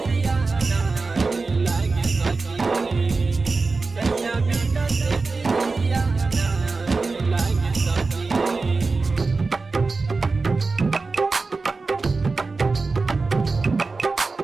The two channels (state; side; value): quieter; left; 4.0 dB